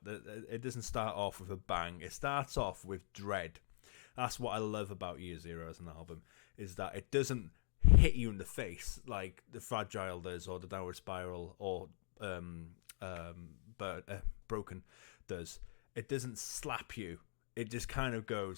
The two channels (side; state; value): right; silent; digital silence